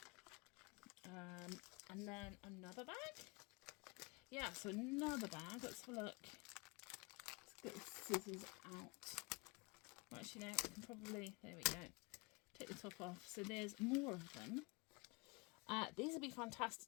And then another bag. Yeah, so another bag. Let's have a look. Let's get the scissors out. Well, actually, no, I can probably, there we go. Take the top off. So there's more of them. These would be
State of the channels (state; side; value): quieter; right; 27.7 dB